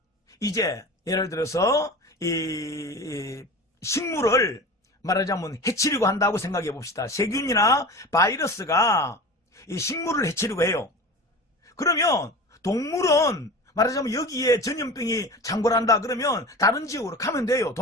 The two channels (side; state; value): both; normal; correlation 0.33